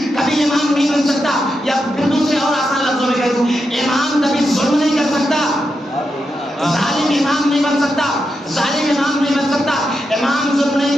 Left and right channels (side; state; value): both; normal; correlation 0.86